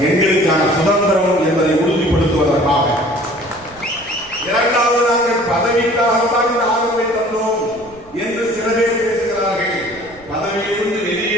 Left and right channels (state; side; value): noise; right; rumble, 26 dB below the sound